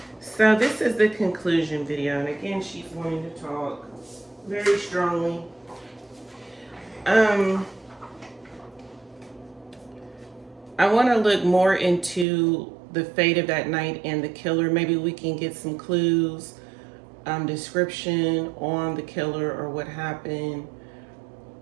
So this is the conclusion video, and again, she's wanting to talk very strongly. I want to look more into the fate of that night and the killer. Maybe we can get some clues, description on the killer or what happened.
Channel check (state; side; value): drops out; left; at 12.2 s